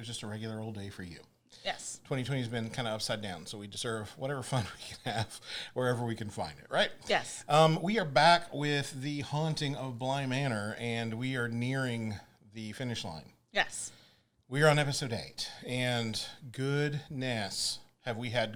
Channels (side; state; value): both; identical; correlation 1.00